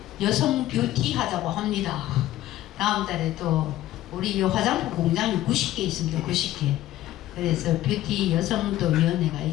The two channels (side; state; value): right; quieter; 14.5 dB